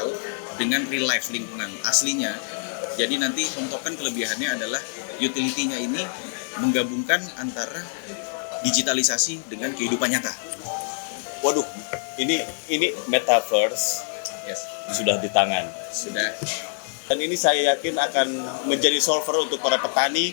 dengan real life lingkungan aslinya. Jadi nanti Home Token kelebihannya adalah utility-nya ini menggabungkan antara digitalisasi dengan kehidupan nyata. Waduh, ini metaverse sudah di tangan. Sudah. Dan ini saya yakin akan menjadi solver untuk para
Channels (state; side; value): silent; right; 62 dB below the other